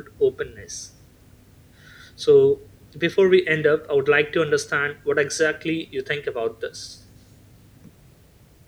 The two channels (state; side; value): identical; both; correlation 1.00